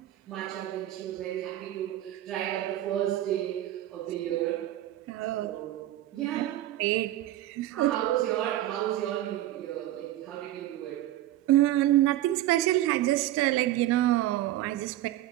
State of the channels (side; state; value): left; quieter; 14.3 dB